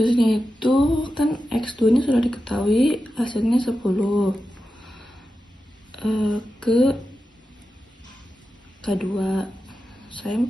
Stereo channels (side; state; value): both; normal; correlation 0.91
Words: itu kan X2 nya sudah diketahui hasilnya 10 ke K2. Saya